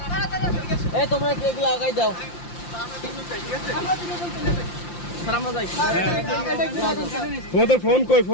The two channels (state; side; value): late; right; 5.8 ms